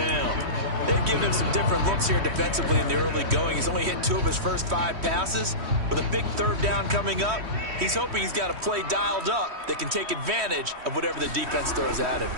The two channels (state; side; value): late; left; 3.1 ms